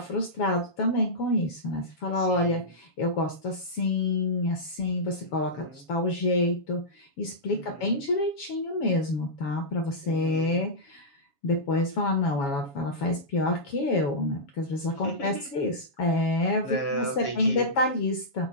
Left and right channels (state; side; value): late; right; 7.2 ms